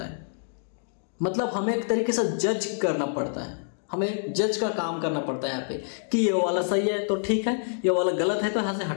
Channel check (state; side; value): silent; right; digital silence